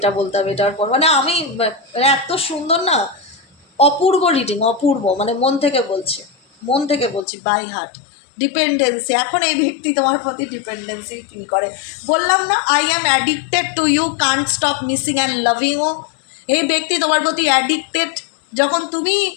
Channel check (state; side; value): drops out; right; at 7.2 s